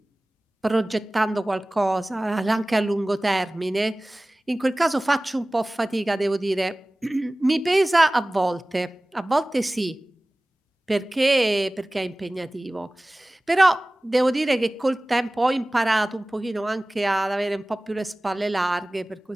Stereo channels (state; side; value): normal; both; correlation 0.98